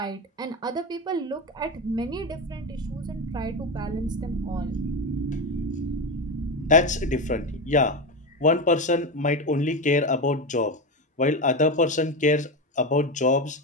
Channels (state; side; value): normal; both; correlation 0.16